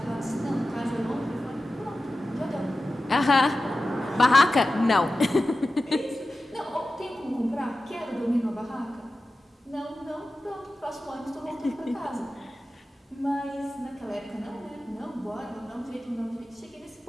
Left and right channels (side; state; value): both; normal; correlation 0.94